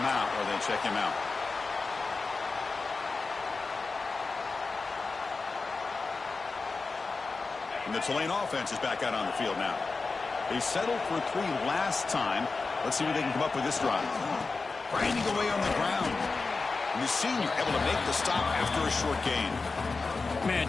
or they check him out. And the Tulane offense is back out on the field now. They settled for 3 last time. Let's see what they can come up with this drive. Grinding away on the ground. And the senior able to make the stop after a short gain. Man,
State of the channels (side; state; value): right; quieter; 4.1 dB